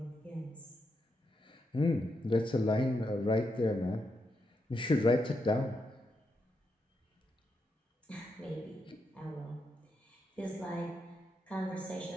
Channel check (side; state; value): both; normal; correlation 0.83